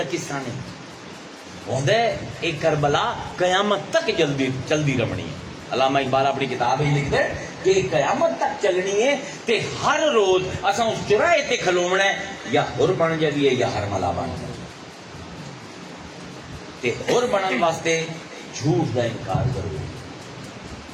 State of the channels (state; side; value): identical; both; correlation 1.00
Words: قصہ نہیں ہوندا ہے، ایک کربلا قیامت تک چلدی رہنی ہے۔ علامہ اقبال اپنی کتاب ہی لکھتا ہے کہ قیامت تک چلنی ہے تے ہر روز اساں اس چوراہے تے کھلونا ہے، یا ہور بن جائیے یا ہرملا بن جائیے۔ تے ہور بنن واسطے جھوٹ دا انکار کرو،